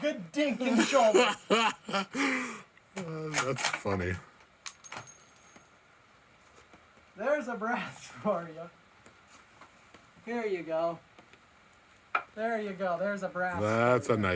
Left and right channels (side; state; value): both; identical; correlation 1.00